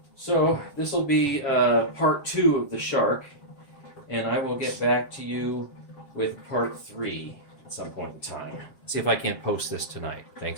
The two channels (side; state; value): right; late; 7.4 ms